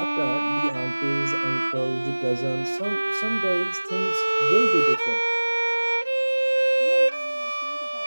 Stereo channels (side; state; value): both; inverted; correlation -1.00